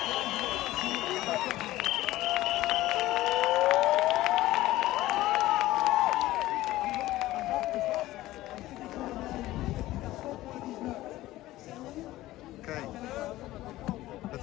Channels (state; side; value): quieter; right; 16.4 dB